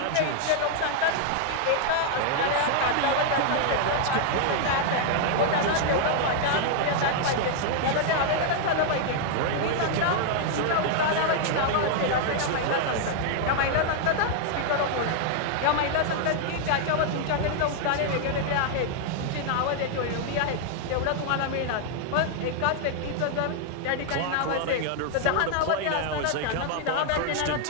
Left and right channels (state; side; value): different; both; correlation 0.00